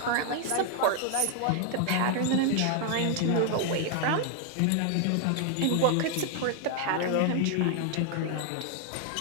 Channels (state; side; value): different; both; correlation 0.00